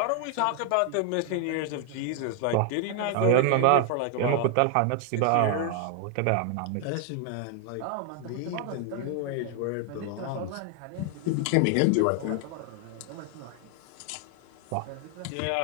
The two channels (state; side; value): different; both; correlation 0.00